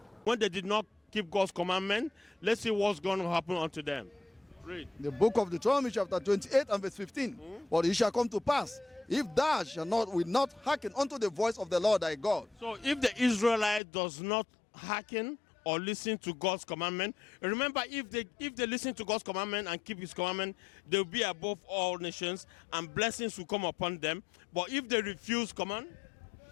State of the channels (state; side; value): drops out; right; at 13.8 s